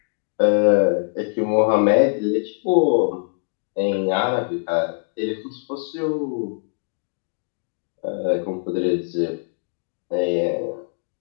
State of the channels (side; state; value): right; silent; digital silence